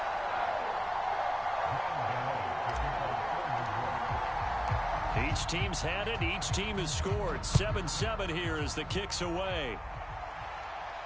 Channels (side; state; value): both; identical; correlation 1.00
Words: Each team's had it. Each team has scored. 7-7 here as the kick's away.